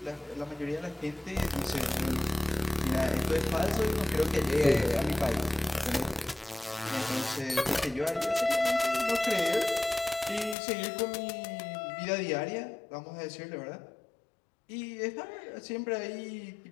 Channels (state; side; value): drops out; right; at 10.6 s